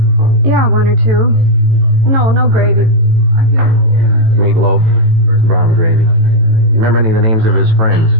Yeah, 1 or 2. No gravy. Meatloaf, brown gravy. You remember any of the names of his friends?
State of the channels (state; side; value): late; left; 18 ms